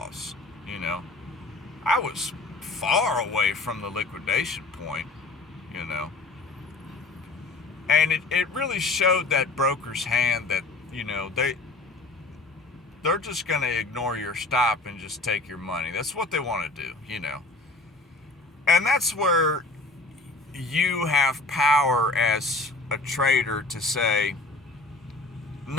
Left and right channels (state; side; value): quieter; right; 3.2 dB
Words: I was far away from the liquidation point, And it really showed that broker's hand that, they're just going to ignore your stop and just take your money. That's what they want to do, And that's where you have power as a trader to say,